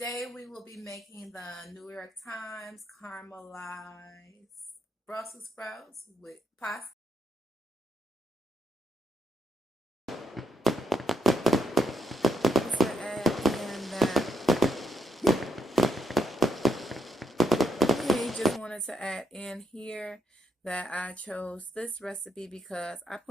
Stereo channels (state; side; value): normal; both; correlation 0.79